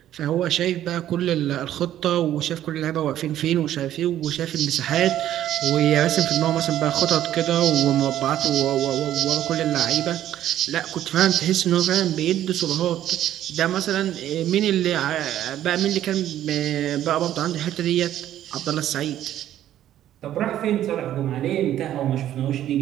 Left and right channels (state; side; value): quieter; left; 12.0 dB